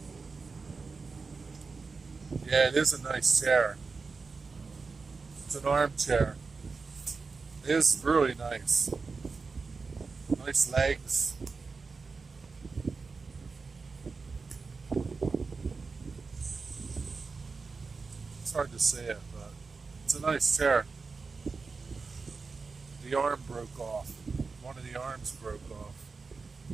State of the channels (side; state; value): left; quieter; 4.5 dB